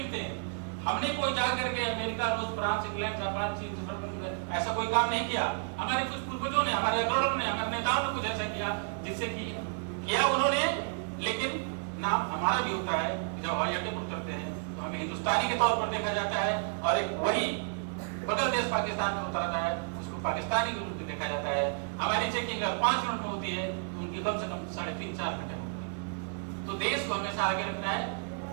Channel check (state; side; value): silent; left; 57 dB below the other